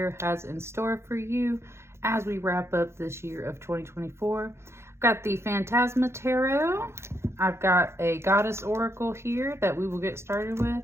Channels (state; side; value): late; left; 0.13 ms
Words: has in store for you as we wrap up this year of 2024. I've got the Phantasma Tarot. I've got a Goddess Oracle here that we will get started with.